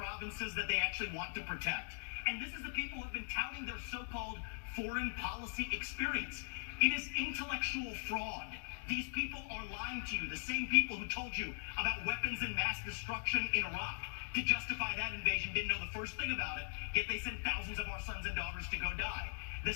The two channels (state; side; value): silent; right; digital silence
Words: that they actually want to protect. And this is the people who have been touting their so-called foreign policy experience. It is intellectual fraud. These people are lying to you. The same people who told you about weapons and mass destruction in Iraq to justify that invasion didn't know the first thing about it, yet they sent thousands of our sons and daughters to go die. The